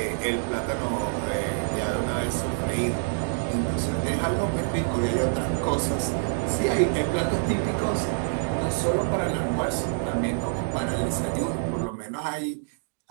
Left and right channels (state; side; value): silent; left; digital silence